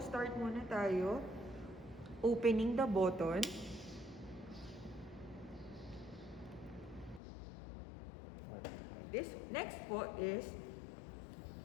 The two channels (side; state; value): right; drops out; at 7.2 s